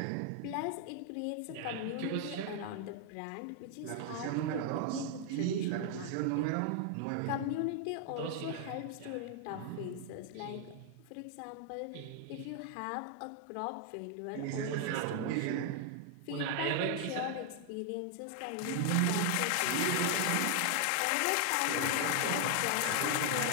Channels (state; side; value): different; both; correlation 0.00